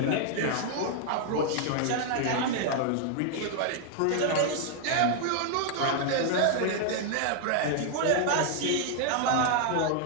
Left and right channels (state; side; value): different; both; correlation 0.00